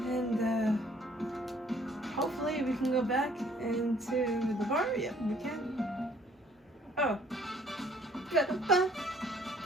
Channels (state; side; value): normal; both; correlation 0.60